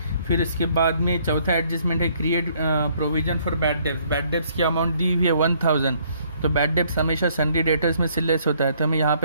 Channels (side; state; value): both; inverted; correlation -0.65